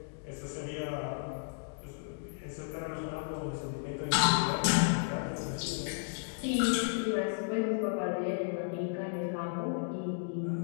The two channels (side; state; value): right; silent; digital silence